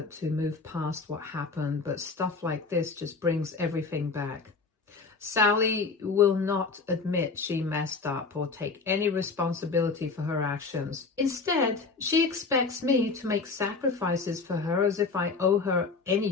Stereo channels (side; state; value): right; quieter; 4.3 dB